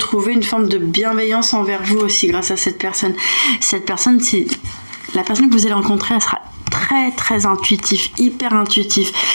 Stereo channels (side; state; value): both; inverted; correlation -1.00